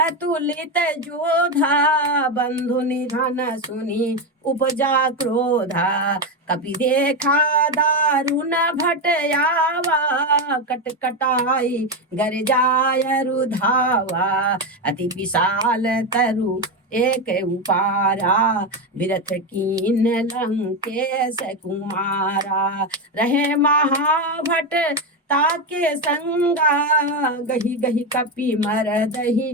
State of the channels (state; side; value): normal; both; correlation 0.11